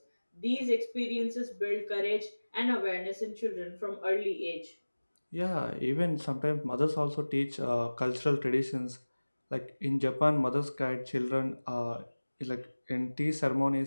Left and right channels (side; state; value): both; inverted; correlation -1.00